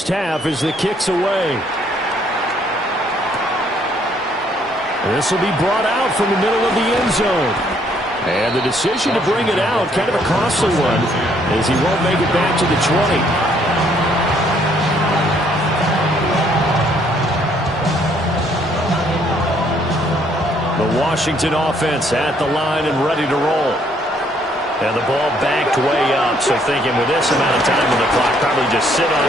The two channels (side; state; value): both; normal; correlation 0.66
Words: half as the kick's away. This will be brought out from the middle of the end zone. And the decision to bring it out, kind of a costly one, as he won't make it back to the 20. The Washington offense at the line and ready to roll. And the ball backed way up, so thinking with this amount of time on the clock, probably just sit on